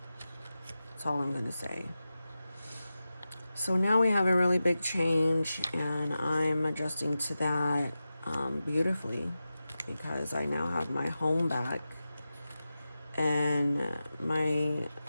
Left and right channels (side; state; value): both; inverted; correlation -0.93